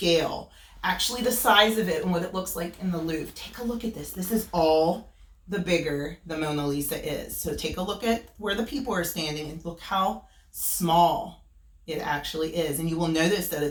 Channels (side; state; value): both; identical; correlation 1.00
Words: actually the size of it and what it looks like in the Louvre. Take a look at this. This is all the bigger the Mona Lisa is. So take a look at where the people are standing and look how small it actually is. And you will notice that